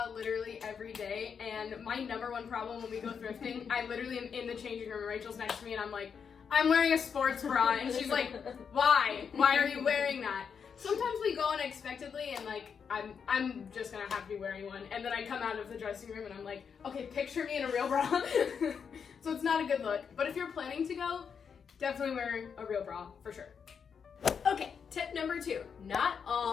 literally every day, and my number one problem when we go thrifting, I literally am in the changing room, Rachel's next to me, and I'm like, I'm wearing a sports bra, and she's like, why? Why are you wearing that? Sometimes we go unexpectedly, and like, I'm just gonna have to be wearing one, and then I come out of the dressing room, and I'm like, okay, picture me in a real bra. So it's not a good look, but if you're planning to go, definitely wear a real bra, for sure. Okay, tip number 2. Not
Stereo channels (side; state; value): right; quieter; 6.6 dB